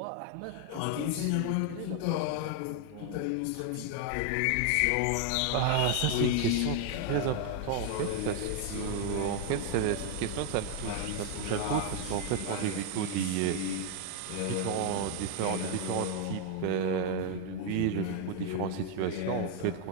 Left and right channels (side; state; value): both; different; correlation 0.00